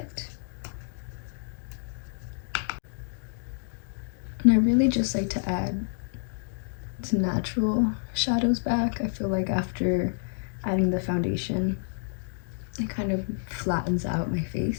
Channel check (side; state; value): right; silent; digital silence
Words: And I really just like to add some natural shadows back. I feel like after adding the foundation, it kind of flattens out my